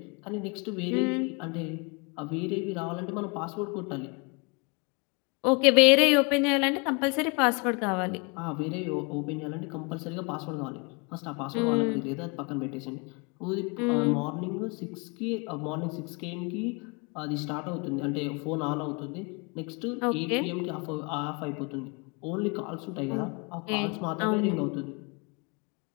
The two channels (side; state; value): right; quieter; 31.5 dB